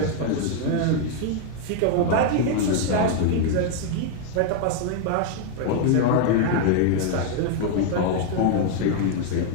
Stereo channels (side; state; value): both; different; correlation 0.00